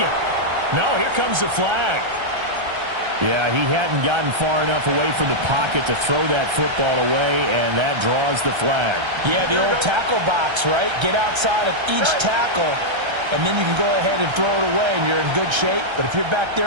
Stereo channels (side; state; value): left; late; 1.3 ms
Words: No, here comes the flag. Yeah, he hadn't gotten far enough away from the pocket to throw that football away, and that draws the flag. Yeah, the old tackle box, right? Get outside of each tackle, and then you can go ahead and throw it away, and you're in good shape. But if you're back